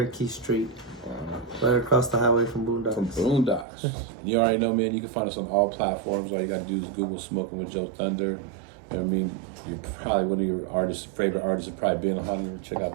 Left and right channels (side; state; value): left; drops out; at 3.7 s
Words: Street. Right across the highway from Boondocks. From Boondocks. You already know, man, you can find us on all platforms. All you got to do is Google Smoking with JoeThunder. You know what I mean? You're probably one of your favorite artists have probably been on. Check out